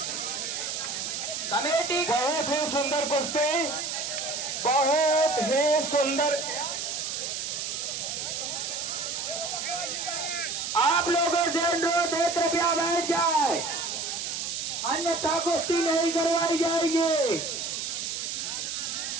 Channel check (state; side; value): noise; right; hiss, 4 dB below the sound